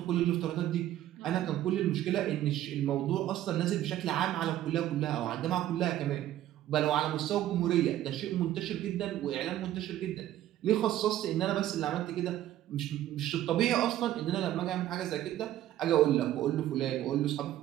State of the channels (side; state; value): left; quieter; 13.0 dB